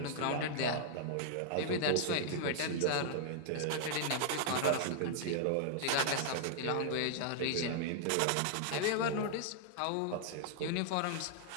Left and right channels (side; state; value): both; different; correlation -0.01